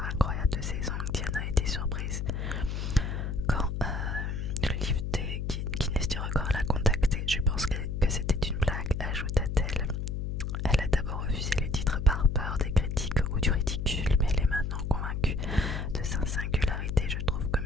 incroyable de ses ongles, Diana était surprise quand le livre des Guinness du record l'a contactée. Je pense que c'était une blague, ajouta-t-elle. Elle a d'abord refusé les titres par peur des critiques ou du ridicule, mais elle est maintenant convaincue de sa singularité. Je trouve que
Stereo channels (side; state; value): left; noise; hum, 2 dB below the sound